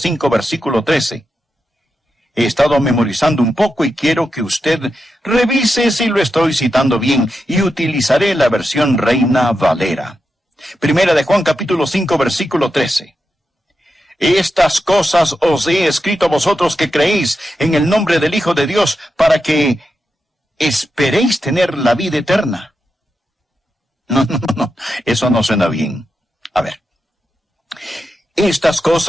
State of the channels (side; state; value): both; normal; correlation 0.88